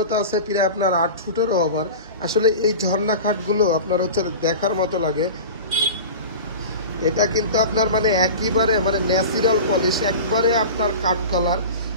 আছে প্রায় আপনার 8 ফুটেরও ওভার। আসলে এই ঝর্ণা খাটগুলো আপনার হচ্ছে দেখার মতো লাগে। এটা কিন্তু আপনার মানে একেবারে মানে ন্যাচারাল পলিশ, একবারে আপনার কাঠ কালার।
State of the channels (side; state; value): both; inverted; correlation -0.32